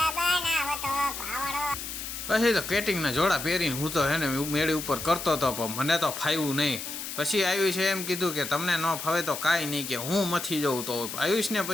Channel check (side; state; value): left; noise; hiss, 7 dB below the sound